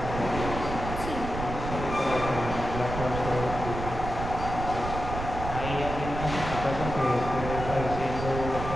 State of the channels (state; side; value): noise; right; rumble, 6 dB below the sound